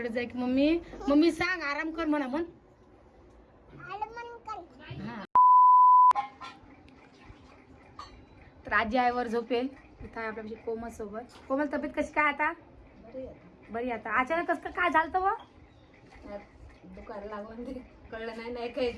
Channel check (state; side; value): identical; both; correlation 1.00